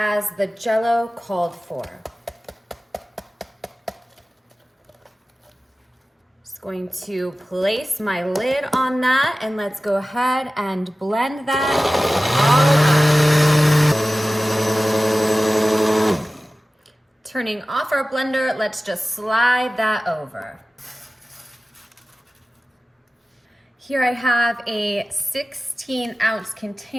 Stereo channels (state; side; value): normal; both; correlation 0.96